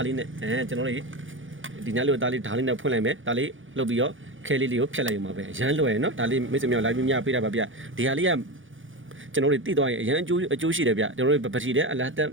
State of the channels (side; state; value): left; late; 0.57 ms